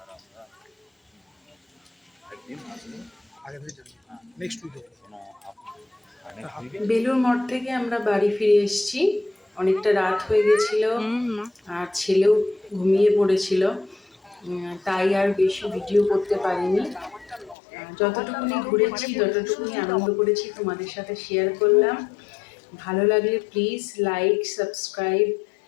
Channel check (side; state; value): right; drops out; at 17.6 s